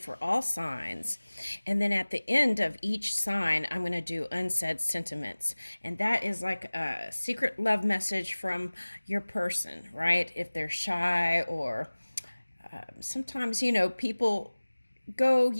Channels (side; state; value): both; inverted; correlation -1.00